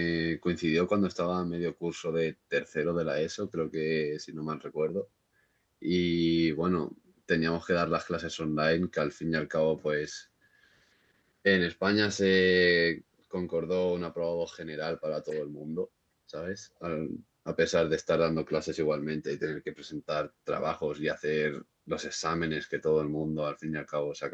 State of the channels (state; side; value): identical; both; correlation 1.00